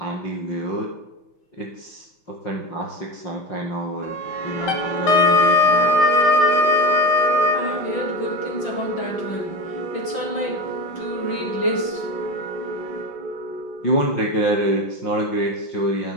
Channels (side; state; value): right; late; 5.9 ms